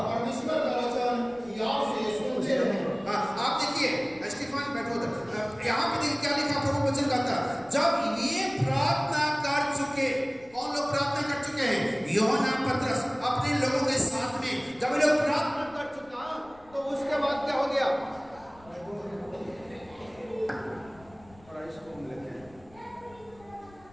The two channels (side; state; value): left; noise; rumble, 26 dB below the sound